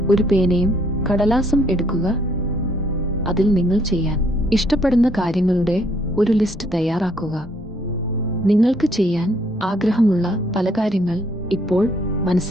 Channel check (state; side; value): normal; both; correlation 0.66